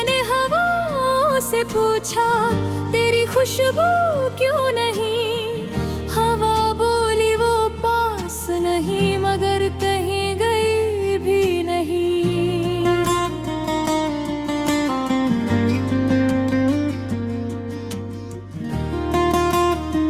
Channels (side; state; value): both; identical; correlation 1.00